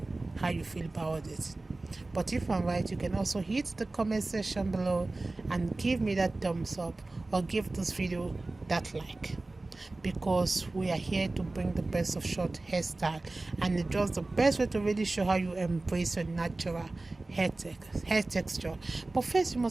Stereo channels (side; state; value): left; quieter; 3.1 dB